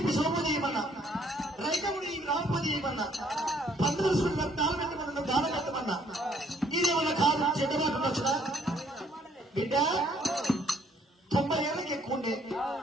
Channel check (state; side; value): normal; both; correlation 0.65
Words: ఇప్పి సోమోది చేయమన్నా, రైతముడి రామపతి చేయమన్నా, 15 రోజులు దానం పెట్టమన్నా, దానం పెట్టమన్నా. ఇదేమన్నా కాదు, చెడ్డమాట వచ్చునా? బిడ్డ 90 ఏళ్ళకి ఎక్కువ ఉండే,